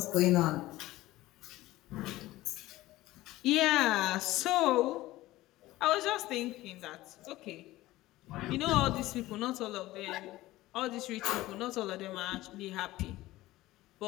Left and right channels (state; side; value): quieter; right; 17.3 dB